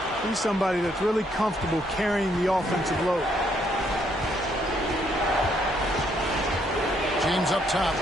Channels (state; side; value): normal; both; correlation 0.71